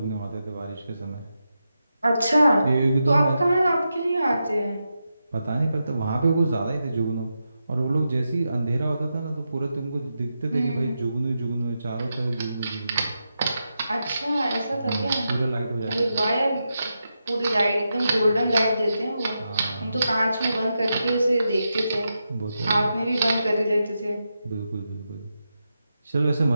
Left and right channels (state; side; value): inverted; both; correlation -0.87